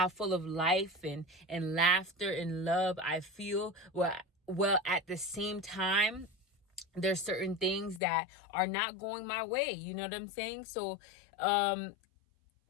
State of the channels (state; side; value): drops out; right; at 8.0 s